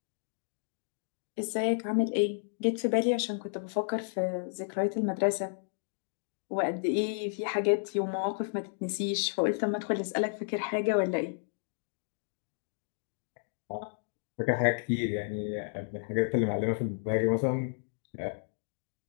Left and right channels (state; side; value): silent; right; digital silence